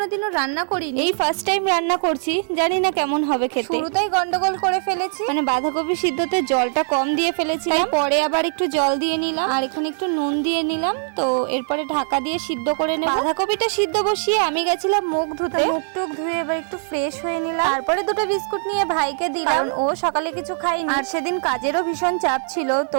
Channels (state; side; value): silent; left; digital silence